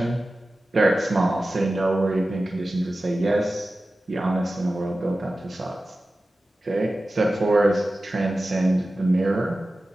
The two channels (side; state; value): both; normal; correlation 0.95